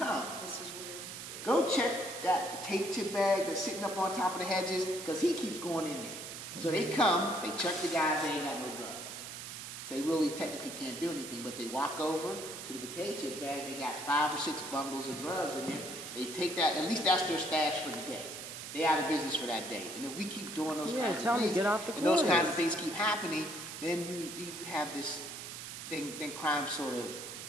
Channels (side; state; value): right; noise; hiss, 9 dB below the sound